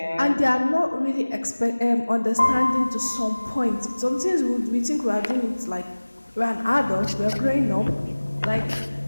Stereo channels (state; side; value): inverted; both; correlation -1.00